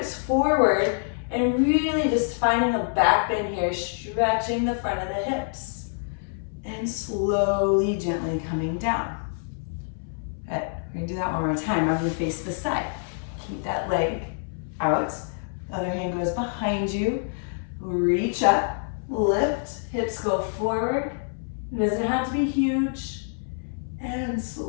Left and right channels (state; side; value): silent; right; 60 dB below the other